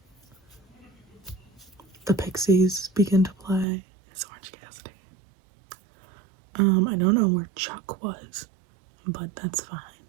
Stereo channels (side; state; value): left; drops out; at 3.7 s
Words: the Pixies begin to play. It's Orange Cassidy. I don't know where Chuck was, but that's fine.